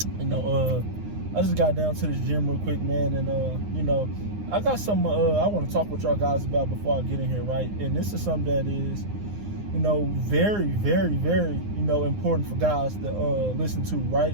I just got down to this gym real quick, man, and I got something I want to talk with y'all guys about before I get in here, right? And this is something that is, very, very, very, important for guys to listen to,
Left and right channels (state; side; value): late; left; 9.7 ms